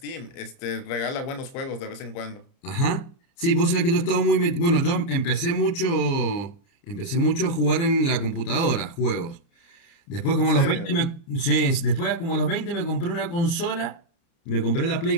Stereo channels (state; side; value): late; right; 30 ms